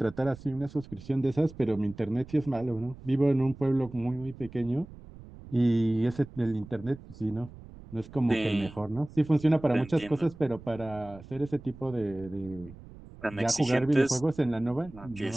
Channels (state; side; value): noise; right; rumble, 18 dB below the sound